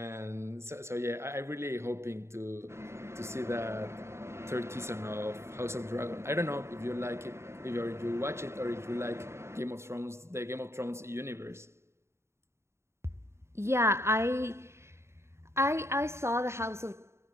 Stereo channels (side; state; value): left; late; 0.13 ms